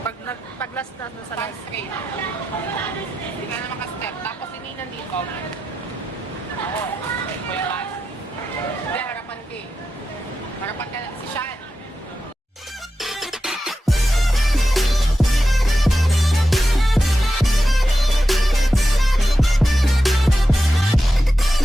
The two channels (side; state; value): both; normal; correlation 0.90